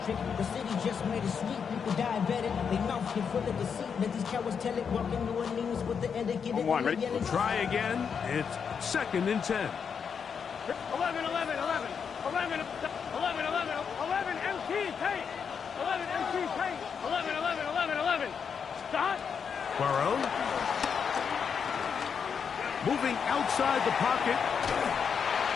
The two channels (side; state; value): right; quieter; 6.7 dB